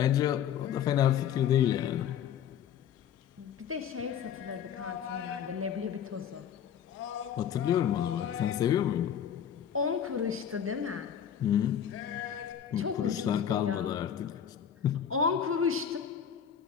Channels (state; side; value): quieter; right; 8.7 dB